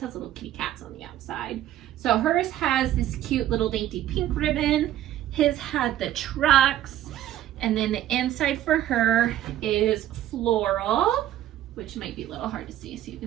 little kitty cats on the outside. So hers has this cute little dainty pink ribbon. His had the trucks. And then the inside for her is floral, which might be a little hard to see. So you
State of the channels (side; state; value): left; quieter; 12.6 dB